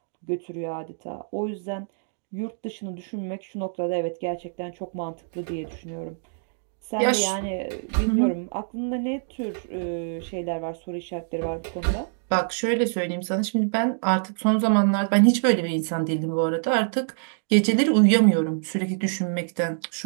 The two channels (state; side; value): silent; left; digital silence